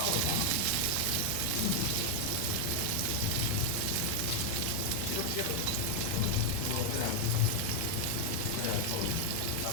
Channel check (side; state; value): both; different; correlation 0.00